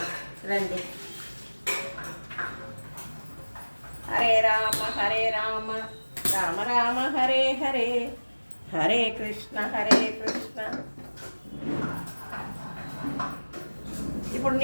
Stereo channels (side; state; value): both; inverted; correlation -1.00